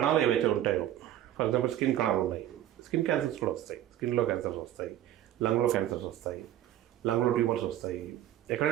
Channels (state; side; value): quieter; left; 12.5 dB